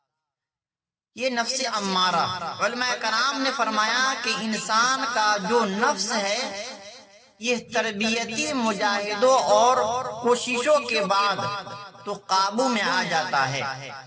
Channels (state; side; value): identical; both; correlation 1.00